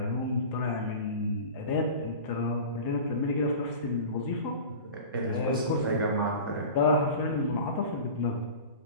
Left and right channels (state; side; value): inverted; both; correlation -0.36